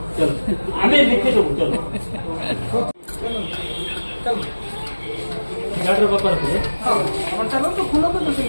চলো আমি লিখে দেবো, চলো গাড়ির ব্যাপার আছে।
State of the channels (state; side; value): inverted; both; correlation -1.00